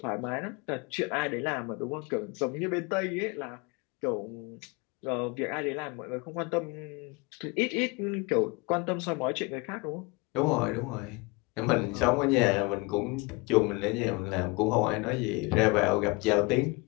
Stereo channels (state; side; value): quieter; right; 26.6 dB